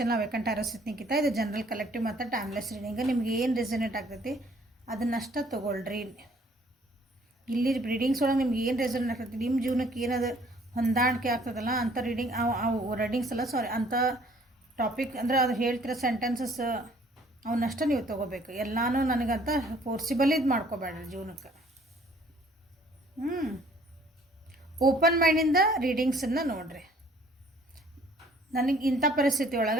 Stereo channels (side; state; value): both; normal; correlation 0.58